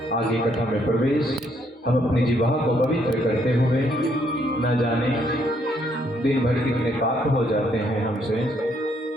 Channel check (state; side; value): normal; both; correlation 0.70